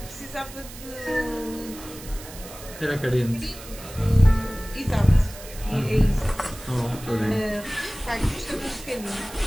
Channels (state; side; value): noise; right; hiss, 15 dB below the sound